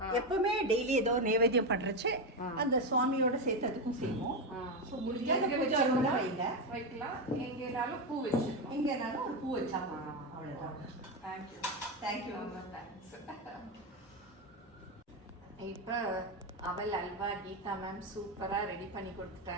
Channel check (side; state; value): both; normal; correlation 0.10